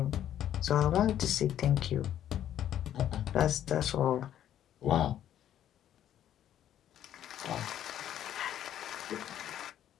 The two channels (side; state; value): right; quieter; 11.0 dB